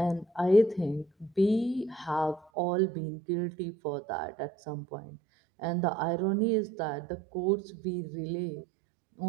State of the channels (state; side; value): drops out; left; at 2.5 s